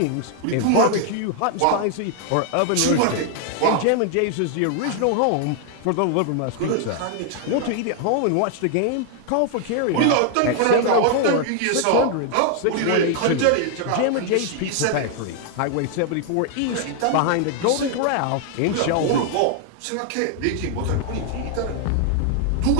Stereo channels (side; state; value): both; different; correlation 0.00